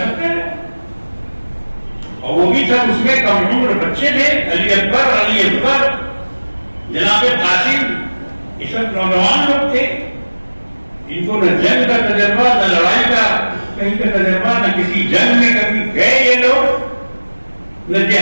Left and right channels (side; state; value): both; inverted; correlation -1.00